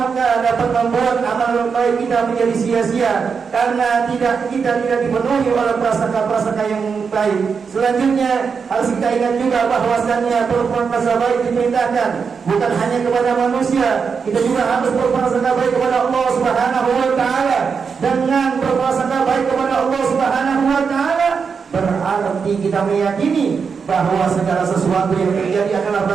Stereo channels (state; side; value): quieter; left; 5.8 dB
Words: dapat membuat amal baik kita menjadi sia-sia karena kita tidak dipenuhi oleh prasangka-prasangka yang baik. Selanjutnya harus kita ingat juga bahwasannya berprasangka baik diperintahkan bukan hanya kepada manusia, kita juga harus berprasangka baik kepada Allah Subhanahu wa taala. Dengan berprasangka baik kepada Allah Subhanahu wa taala berarti kita meyakini bahwa segala sesuatu yang terjadi adalah